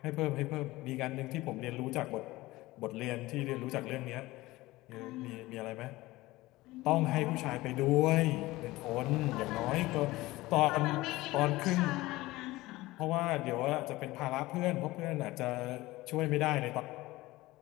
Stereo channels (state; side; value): quieter; right; 19.1 dB